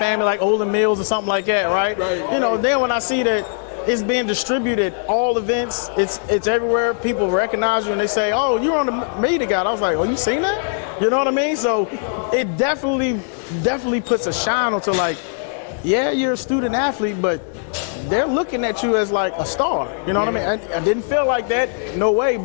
like Olden Mills or something like that, right? Right. Then when I see that it's being distributed, all events, it's everywhere. People recognize you and they say, oh, you're on the media guide. I was like, oh, you seen that? You know what I mean? So it definitely puts a shine onto like, yeah, you're a student athlete, but they're looking at you as like a star. You know what I mean? I didn't feel like that, no way,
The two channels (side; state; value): right; silent; digital silence